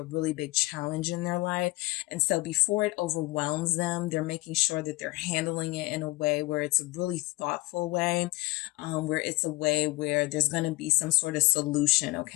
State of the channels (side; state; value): right; quieter; 21.0 dB